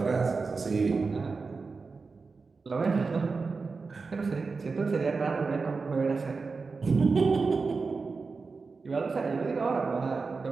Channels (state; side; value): quieter; left; 4.4 dB